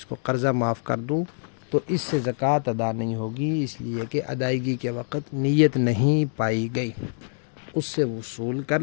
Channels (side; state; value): right; silent; digital silence